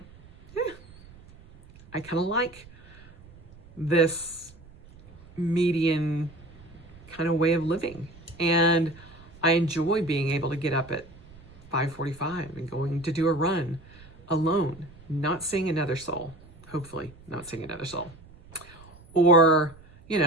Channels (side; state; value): right; noise; rumble, 22 dB below the sound